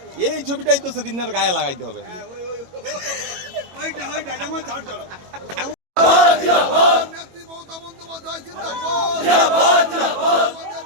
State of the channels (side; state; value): left; late; 21 ms